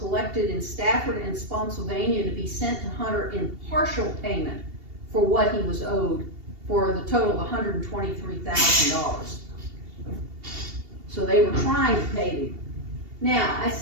in Stafford and Spotsylvania to be sent to Hunter in partial payment for what he was owed, for the total of $123,000. So they were trying to pay him. Now, I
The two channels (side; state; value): left; late; 2.8 ms